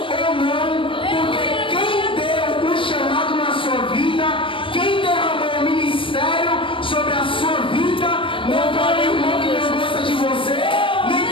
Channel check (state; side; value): late; right; 0.25 ms